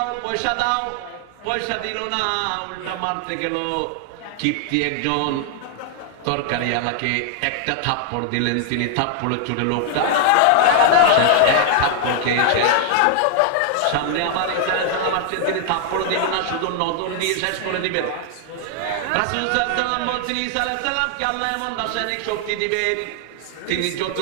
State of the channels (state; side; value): different; both; correlation 0.00